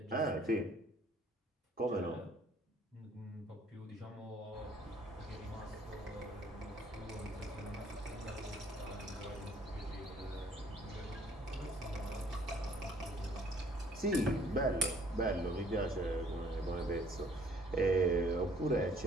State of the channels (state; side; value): normal; both; correlation 0.59